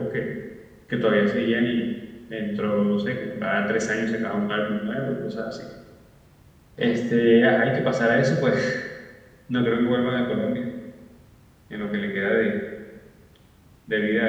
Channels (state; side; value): identical; both; correlation 1.00